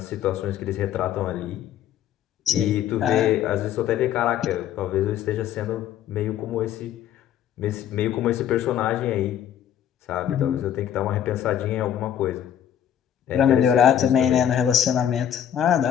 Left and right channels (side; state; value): right; quieter; 10.2 dB